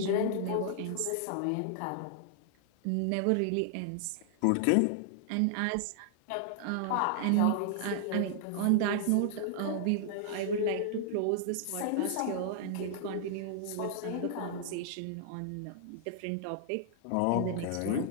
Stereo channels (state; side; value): different; both; correlation -0.01